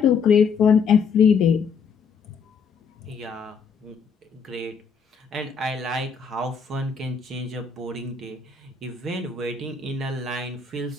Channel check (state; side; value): quieter; right; 5.8 dB